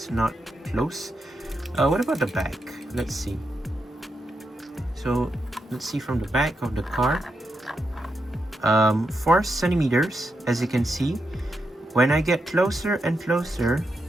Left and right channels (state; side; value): normal; both; correlation 0.84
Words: not close. What about the back? Let's see. So let's see from the back of the car. 4 centimeters, as you can see. When I get closer and closer,